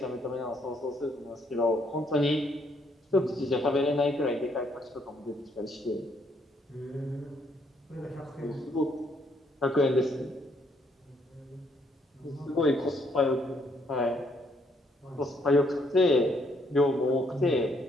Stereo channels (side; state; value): both; normal; correlation 0.70